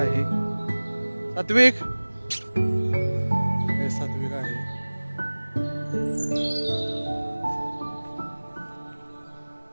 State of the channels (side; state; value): both; inverted; correlation -1.00